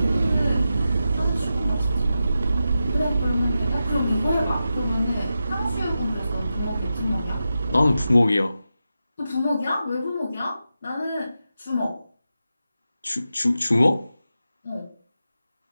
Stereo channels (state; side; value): inverted; both; correlation -0.90